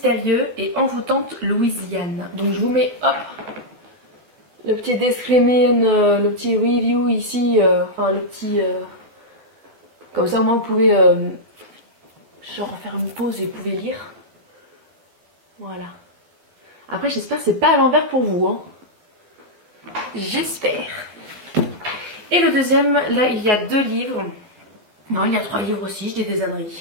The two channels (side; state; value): left; late; 12 ms